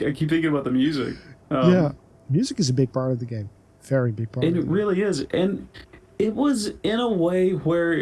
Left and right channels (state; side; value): identical; both; correlation 1.00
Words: keep thinking about the music. Yeah. Music is a big part of the game. Very big part. And it really is. And it was in a way